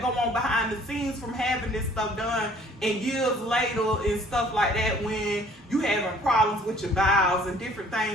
go on behind the scenes from having this stuff done and years later and stuff like that when you having problems with your bowels and different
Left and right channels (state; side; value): normal; both; correlation 0.56